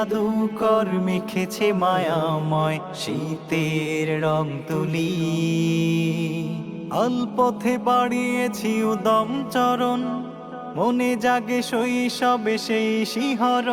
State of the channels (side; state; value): both; identical; correlation 1.00